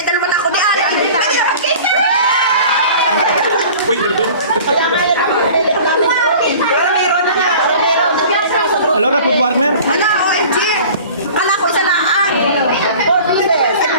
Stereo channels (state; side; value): inverted; both; correlation -0.43